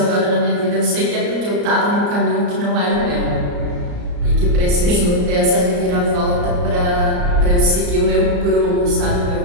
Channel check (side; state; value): left; late; 34 ms